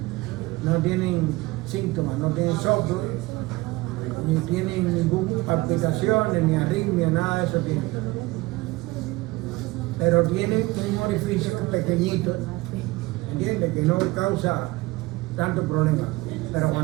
No tienen soplo, ni tienen ninguna palpitación, ni arritmia, nada de eso tienen. Pero tienen un orificio pequeñito, ¿entiendes? Que no causa tanto problema. Pero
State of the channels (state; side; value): quieter; left; 21.2 dB